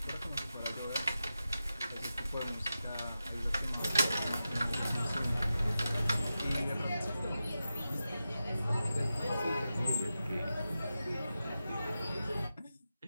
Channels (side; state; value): both; inverted; correlation -0.91